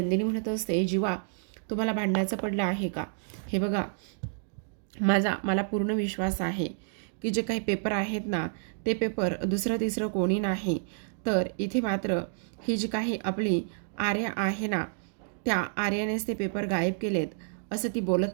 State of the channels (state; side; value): silent; left; digital silence